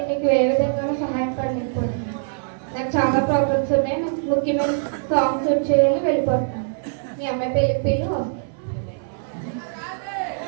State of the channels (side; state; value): left; silent; 64 dB below the other